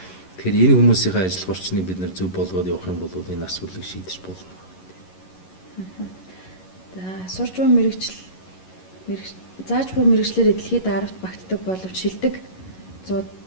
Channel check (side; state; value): right; late; 11 ms